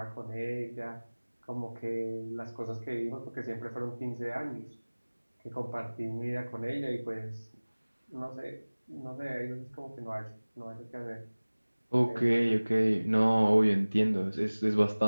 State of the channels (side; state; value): both; inverted; correlation -1.00